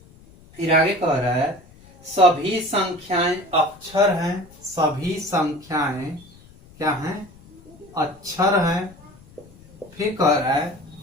फिर आगे कह रहा है सभी संख्याएं अक्षर हैं। सभी संख्याएं क्या हैं? अक्षर हैं। फिर कह रहा है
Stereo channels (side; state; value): left; noise; rumble, 24 dB below the sound